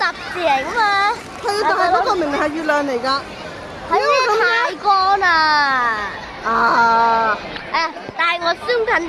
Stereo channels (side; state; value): both; identical; correlation 1.00